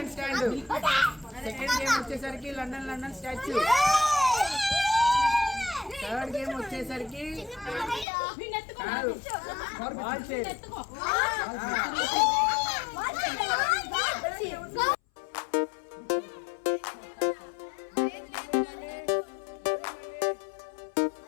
స్టాండ్, సెకండ్ గేమ్ వచ్చేసరికి లండన్ స్టాచ్యూ, థర్డ్ గేమ్ వచ్చేసరికి బాల్ చైర్.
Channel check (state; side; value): drops out; right; at 8.1 s